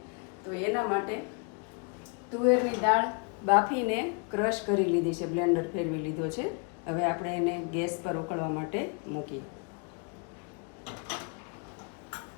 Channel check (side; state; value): right; quieter; 35.3 dB